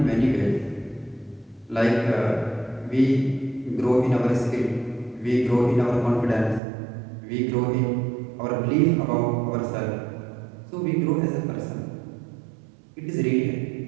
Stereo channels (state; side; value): drops out; left; at 6.6 s